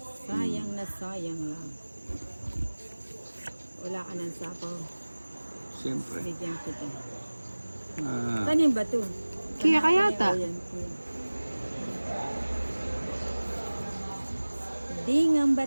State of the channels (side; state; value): both; inverted; correlation -1.00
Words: Sayang na sayang lang. Wala ka ng sapaw. Siyempre. Bigyan kita. Ah, Tanim ba to? Kaya kaya ta. O yan, kuya. Dingang ba